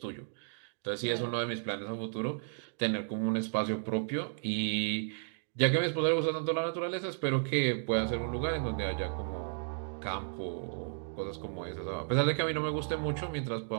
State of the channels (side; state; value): left; silent; digital silence